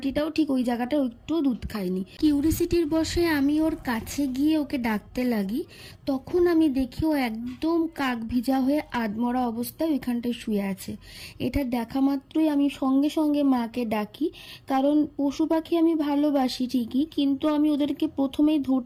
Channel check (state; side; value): identical; both; correlation 1.00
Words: ঠিক ওই জায়গাটা একটু দুধ খায়নি। কিউরিসিটির বসে আমি ওর কাছে গিয়ে ওকে ডাকতে লাগি। তখন আমি দেখি ও একদম কাক ভিজা হয়ে আধমরা অবস্থায় ওইখানটায় শুয়ে আছে। এটা দেখা মাত্রই আমি সঙ্গে সঙ্গে মাকে ডাকি, কারণ পশু পাখি আমি ভালোবাসি ঠিকই, কিন্তু আমি ওদেরকে প্রথমেই